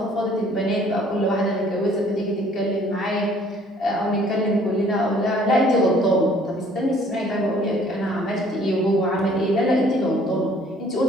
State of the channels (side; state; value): both; normal; correlation 0.58